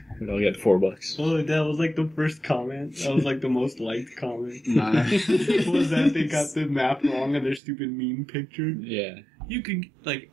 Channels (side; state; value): left; drops out; at 7.6 s